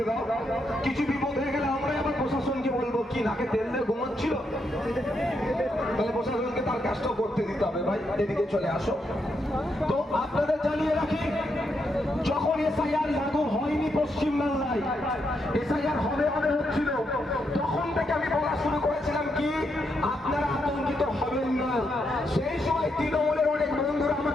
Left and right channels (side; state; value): both; normal; correlation 0.80